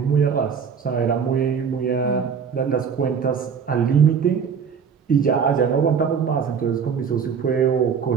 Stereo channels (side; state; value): left; quieter; 6.7 dB